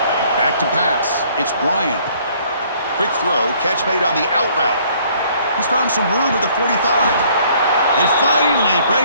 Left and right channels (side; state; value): both; inverted; correlation -0.60